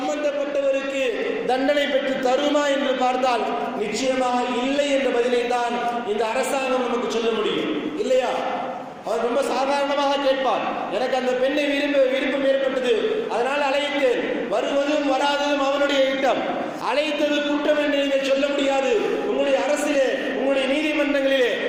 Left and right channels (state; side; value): identical; both; correlation 1.00